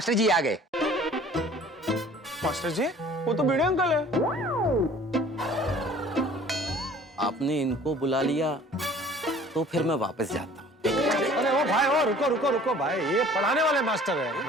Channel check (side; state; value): both; normal; correlation 0.50